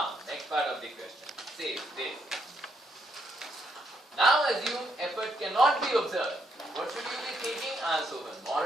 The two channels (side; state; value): both; normal; correlation 0.76